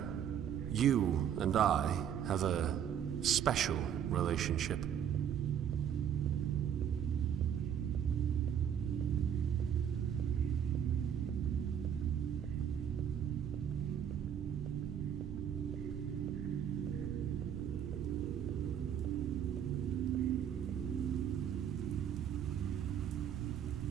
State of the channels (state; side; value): quieter; left; 9.0 dB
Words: You and I have a special relationship.